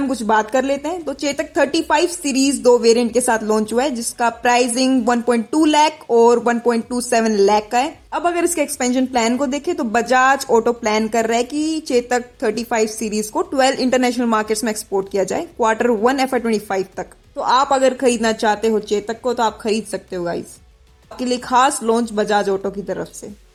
में कुछ बात कर लेते हैं। तो चेतक 35 सीरीज 2 वेरिएंट के साथ लॉन्च हुआ है, जिसका प्राइसिंग 1.2 लाख और 1.27 लाख का है। अब अगर इसके एक्सपेंशन प्लान को देखें तो बजाज ऑटो प्लान कर रहा है कि चेतक 35 सीरीज को 12 इंटरनेशनल मार्केट्स में एक्सपोर्ट किया जाए Q1 FY25 तक। तो आप अगर खरीदना चाहते हो चेतक को तो आप खरीद सकते हो गाइस। आपके लिए खास लॉन्च बजाज ऑटो की तरफ से।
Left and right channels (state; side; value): identical; both; correlation 1.00